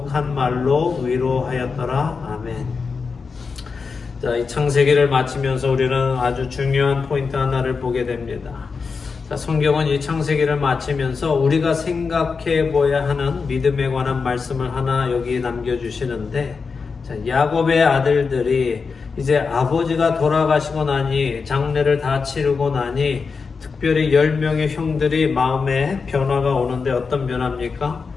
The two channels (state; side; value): quieter; right; 5.0 dB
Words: 말로 위로하였더라. 아멘. 자, 이 창세기를 마치면서 우리는 아주 중요한 포인트 하나를 보게 됩니다. 자, 성경은 이 창세기를 마치면서 우리가 생각해 보아야 하는 믿음에 관한 말씀을 하나 여기 남겨주시는데, 자, 야곱의 아들들이 이제 아버지가 돌아가시고 나니 장례를 다 치르고 나니 특별히 10명의 형들이 마음에 변화가 오는데 어떤 변화입니까?